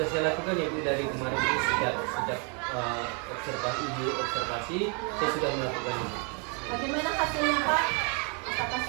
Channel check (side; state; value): left; quieter; 36.1 dB